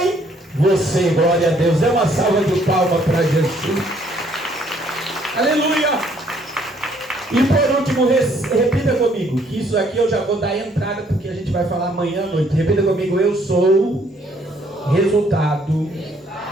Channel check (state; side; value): normal; both; correlation 0.65